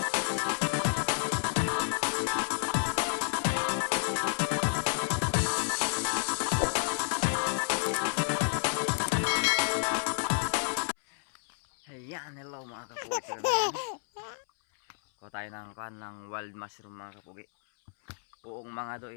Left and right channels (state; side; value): silent; right; 57 dB below the other